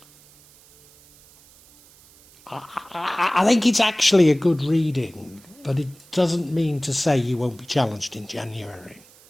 I think it's actually a good reading, but it doesn't mean to say you won't be challenged in January.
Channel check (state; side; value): noise; right; hiss, 26 dB below the sound